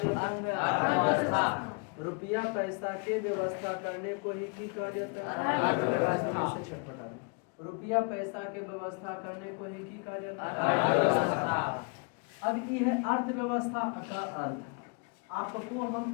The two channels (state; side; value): quieter; right; 35.6 dB